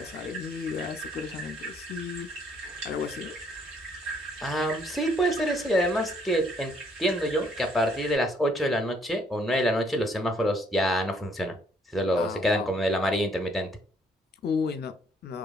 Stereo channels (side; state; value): both; normal; correlation 0.66